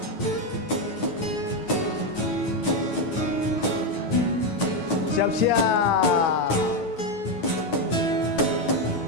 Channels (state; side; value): late; right; 9.3 ms